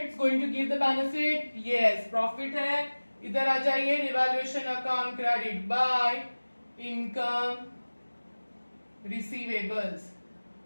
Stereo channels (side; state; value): both; inverted; correlation -1.00